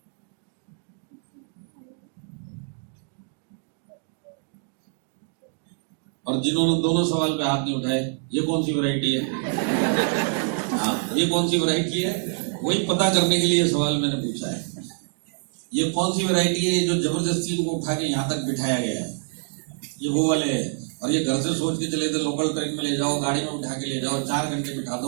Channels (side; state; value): left; silent; 61 dB below the other